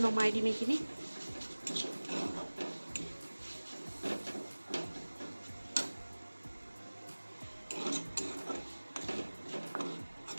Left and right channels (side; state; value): both; inverted; correlation -1.00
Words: নমাই দিম এইখিনি।